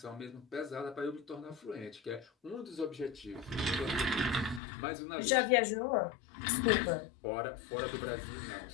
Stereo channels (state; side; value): drops out; right; at 4.6 s